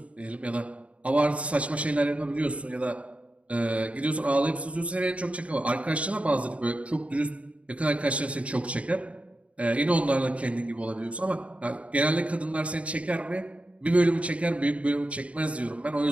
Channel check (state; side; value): late; left; 0.064 ms